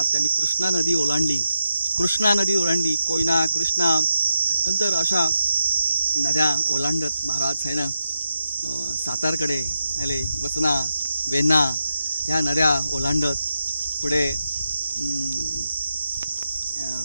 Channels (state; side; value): inverted; both; correlation -0.87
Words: त्यांनी कृष्णा नदी ओलांडली, कोयना, कृष्णा, नंतर अशा नद्या ओलांडत महाराज आहे ना सातारकडे आले. वसना, वेण्णा ह्या नद्या ओलांडत पुढे